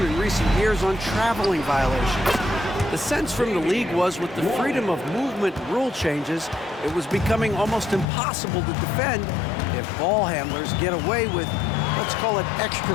in recent years on traveling violations. The sense from the league was with the freedom of movement rule changes, it was becoming almost impossible to defend if ball handlers get away with, let's call it,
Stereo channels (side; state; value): right; drops out; at 8.1 s